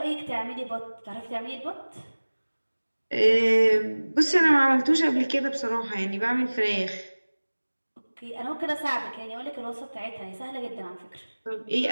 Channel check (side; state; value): both; inverted; correlation -1.00